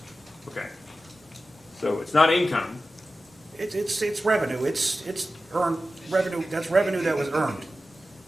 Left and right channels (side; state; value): both; normal; correlation 0.94